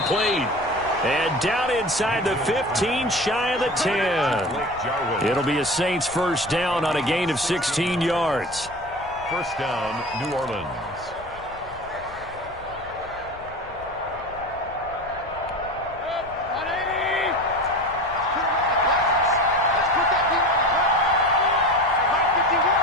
And down inside the 15, shy of the 10. It'll be a Saints 1st down on a gain of 16 yards. 1st down, New Orleans.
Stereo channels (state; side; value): noise; left; rumble, 20 dB below the sound